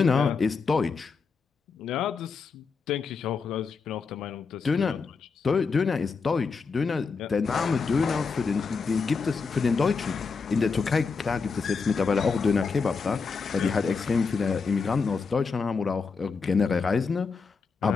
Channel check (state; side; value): quieter; right; 4.9 dB